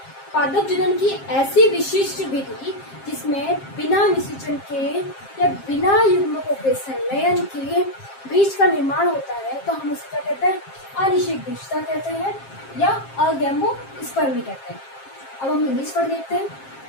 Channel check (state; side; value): late; right; 7.5 ms